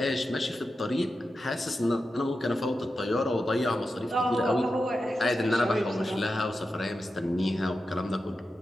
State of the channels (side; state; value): both; normal; correlation 0.90